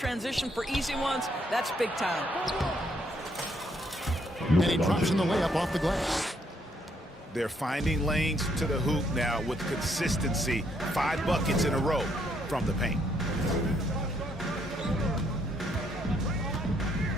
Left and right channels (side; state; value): both; normal; correlation 0.71